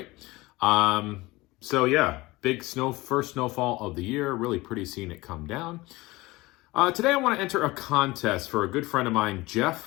Big snow, first snowfall of the year. Really pretty seeing it come down. Today I want to enter a contest for a good friend of mine,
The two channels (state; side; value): quieter; right; 20.9 dB